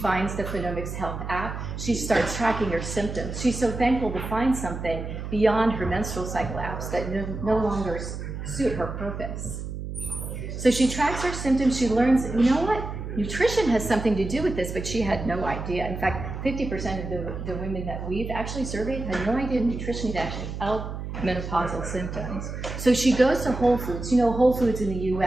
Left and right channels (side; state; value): right; noise; hum, 7 dB below the sound